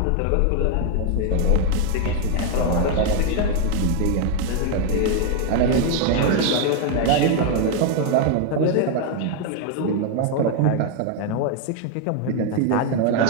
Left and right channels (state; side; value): different; both; correlation 0.01